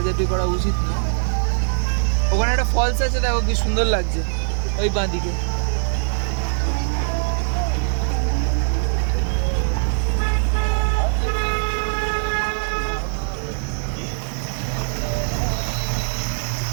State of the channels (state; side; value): silent; left; digital silence